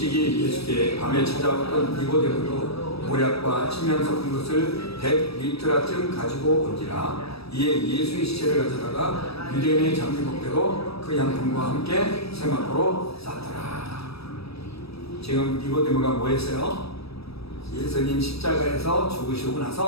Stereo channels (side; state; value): right; late; 0.78 ms